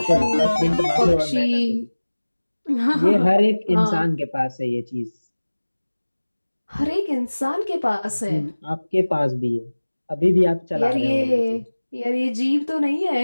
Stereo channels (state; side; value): inverted; both; correlation -1.00